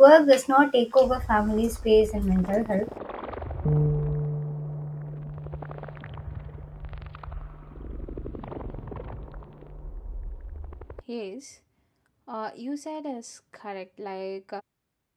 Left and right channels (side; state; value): both; identical; correlation 1.00